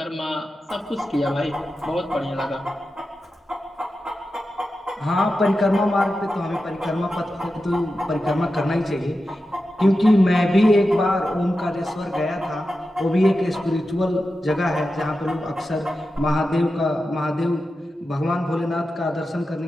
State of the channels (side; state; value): both; normal; correlation 0.91